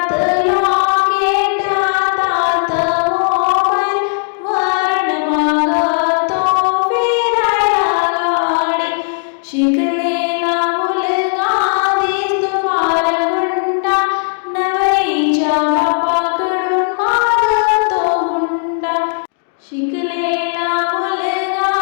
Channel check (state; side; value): silent; right; digital silence